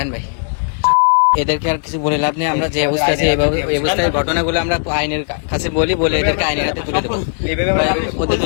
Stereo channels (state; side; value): silent; right; digital silence